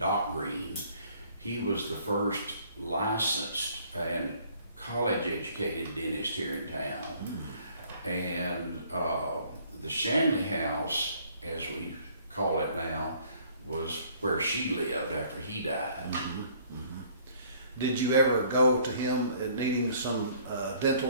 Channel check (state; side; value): inverted; both; correlation -0.59